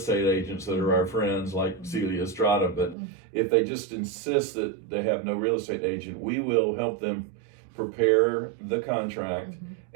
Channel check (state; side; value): drops out; left; at 3.0 s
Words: agents that are our friends, like Celia Estrada, but if they just insist that they have no real estate agent, we will help them prepare the contract,